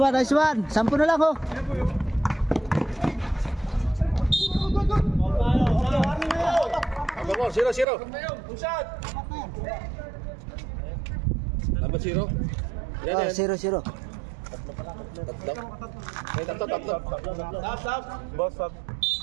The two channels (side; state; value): left; drops out; at 7.9 s